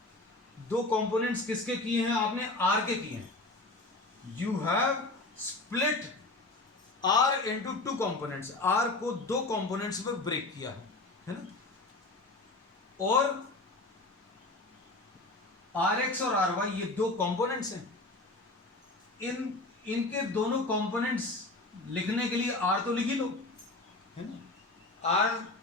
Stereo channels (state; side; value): quieter; right; 3.0 dB